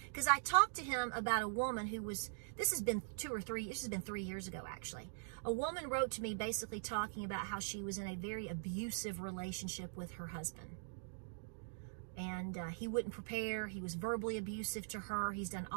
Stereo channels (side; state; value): left; silent; digital silence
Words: because I talked to him about a woman who was, this has been 3 years ago actually. A woman wrote to me basically talking about how she was in a very abusive relationship with her husband, and he wouldn't prepare. He was verbally abusive to her. He's done